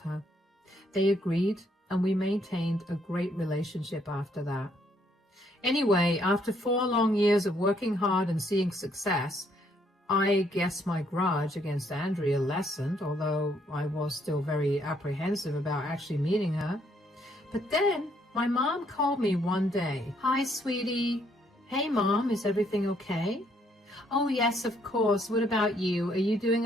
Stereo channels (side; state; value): both; normal; correlation 0.70